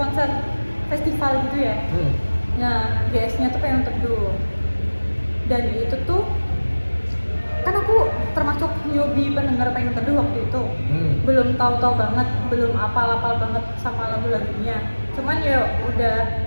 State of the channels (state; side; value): inverted; both; correlation -1.00